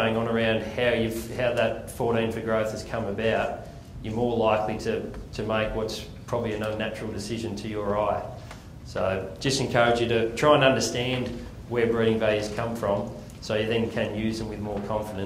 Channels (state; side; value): identical; both; correlation 1.00